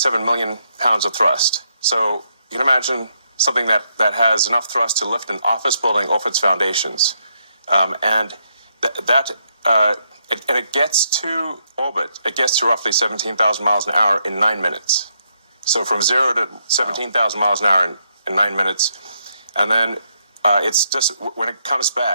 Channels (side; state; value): both; inverted; correlation -0.77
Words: million pounds of thrust. So you can imagine something that has enough thrust to lift an office building off its foundations, and it gets to orbit. It gets to roughly 17,000 miles an hour in 9 minutes. So from 0 to 17,000 miles an hour in 9 minutes. And then it's just, when it comes